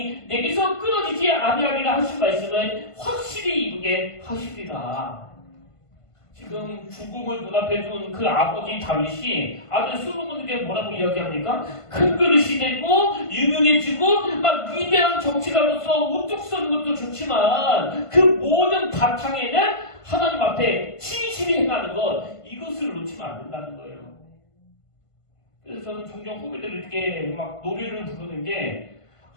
내게서 끊어지지 아니하리라 하신 말씀을 확실히 이루게 하시리라. 지금 죽음을 눈앞에 둔 그 아버지 다윗이 아들 솔로몬에게 뭐라고 이야기합니까? 큰 그릇이 되고 유명해지고 막 위대한 정치가로서 우뚝 서는 것도 좋지만 그 모든 바탕에는 하나님 앞에 진실이 행하는 것, 이것을 놓치면 안 된다는 거예요. 그래서 저는 종종 후배들에게 막 노래를 부르는 게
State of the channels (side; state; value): right; late; 1.5 ms